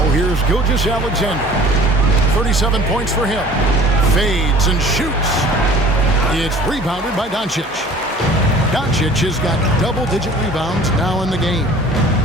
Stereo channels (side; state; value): both; normal; correlation 0.47